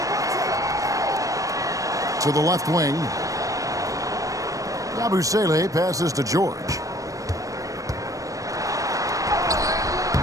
To the left wing. Abu Saleh passes to George.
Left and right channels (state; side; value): late; left; 0.16 ms